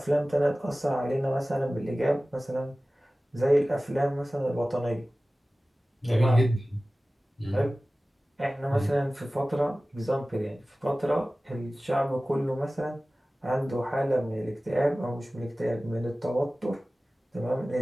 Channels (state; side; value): normal; both; correlation 0.97